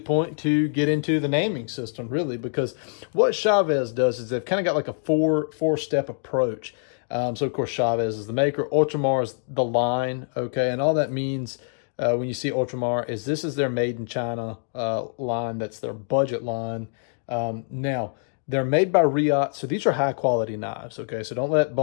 point to get into the naming system, really, because what Chaves does is they've kind of got like a four-step approach. So of course, Chaves is the maker. Ultramar is the line. Okay, and all that means, when you see Ultramar, is this is their made in China line. That's their budget line. Now, they're made by Riot, so these are high quality knives, okay? So don't let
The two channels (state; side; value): silent; right; digital silence